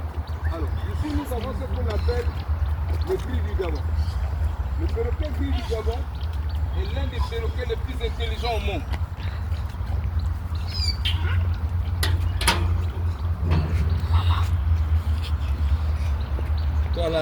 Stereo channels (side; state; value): both; identical; correlation 1.00